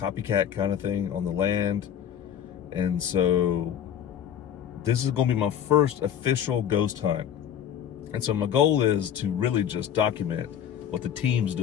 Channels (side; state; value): right; quieter; 9.4 dB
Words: kind of thing on the land. And so this is going to be my first official ghost hunt. And so my goal is to really just document what the team's